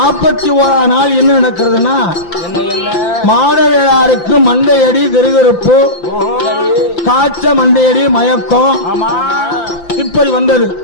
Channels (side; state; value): right; late; 5.8 ms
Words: நாள் என்ன நடக்கிறதுனா மாடவேளாருக்கு மண்டையடி திருகருப்பு காய்ச்ச மண்டையடி மயக்கம் இப்படி வந்தது.